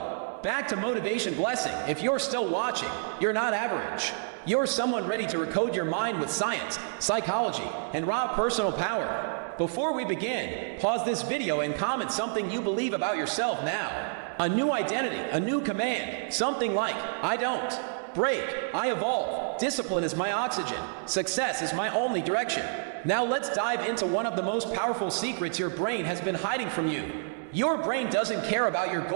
back to Motivation Blessing. If you're still watching, you're not average. You're someone ready to recode your mind with science, psychology, and raw personal power. Before we begin, pause this video and comment something you believe about yourself now. A new identity, a new command, something like, I don't break, I evolve. Discipline is my oxygen. Success is my only direction. Now let's dive into one of the most powerful secrets your brain has been hiding from you. Your brain doesn't care about your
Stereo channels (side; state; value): left; silent; 59 dB below the other